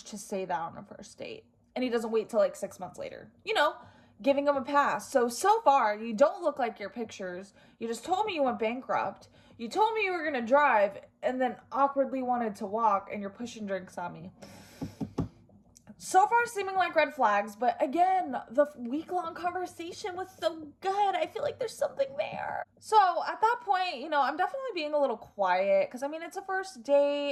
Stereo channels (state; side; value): identical; both; correlation 1.00